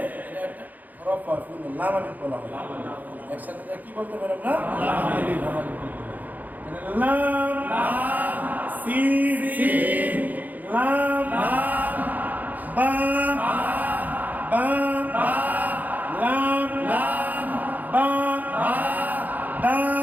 এটা একটা হরফ হয়, ফুল লাম আলিফ বলা হয়। একসাথে এটা কি বলতে পারেন না? লাম আলিফ। লাম লাম সিন সিন লাম লাম বা বা লাম লাম বা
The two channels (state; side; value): late; left; 0.082 ms